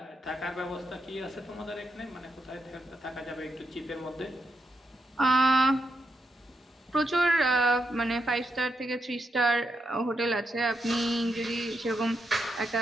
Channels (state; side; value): normal; both; correlation 0.83